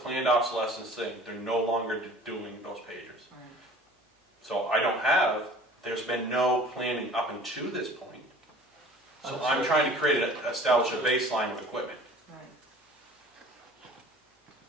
obsolescence thing. They're no longer doing those pagers. Right. So there's been no planning up until this point. So I'm trying to establish a baseline of equipment. Right.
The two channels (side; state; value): both; normal; correlation 0.47